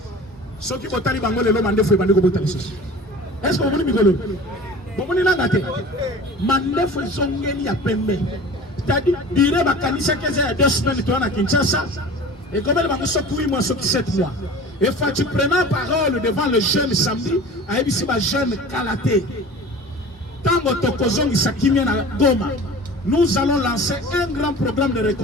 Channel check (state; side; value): normal; both; correlation 0.40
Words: Ce qui botali bango le lo mandefu et bandeko botali sosi. Est-ce que vous voulez migolo? Bomoni nangate mandefu zongeli ya pembe c'est-à-dire dire bakanisa keza ya 2 semaines to na Kinshasa et comme elle va se 8 mois sur 7 mois et Fachi prenant parole devant le jeune samedi a ebisi ba jeune Kalaté tango tokozongi sakimia na Goma nous allons lancer un grand programme de